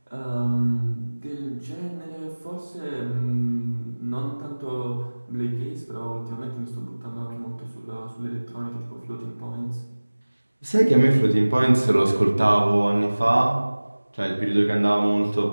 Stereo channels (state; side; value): inverted; both; correlation -1.00